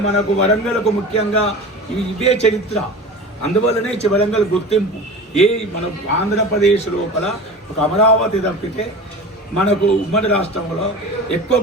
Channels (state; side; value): normal; both; correlation 0.33